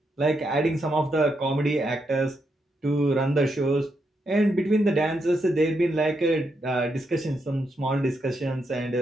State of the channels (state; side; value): normal; both; correlation 0.81